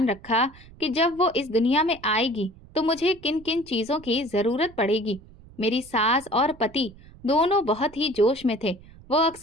रखा कि जब वो इस दुनिया में आएगी तो मुझे किन किन चीजों की जरूरत पड़ेगी। मेरी सास और पति दोनों बहुत ही जोश में थे। वो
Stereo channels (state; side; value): noise; right; rumble, 22 dB below the sound